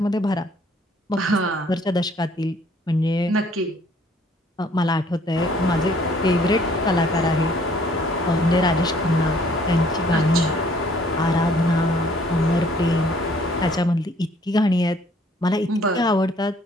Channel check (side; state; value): both; normal; correlation 0.60